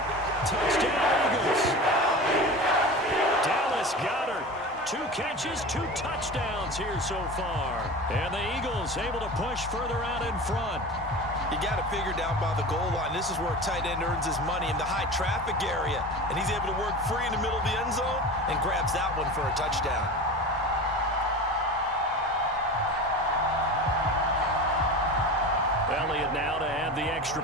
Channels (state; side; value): normal; both; correlation 0.32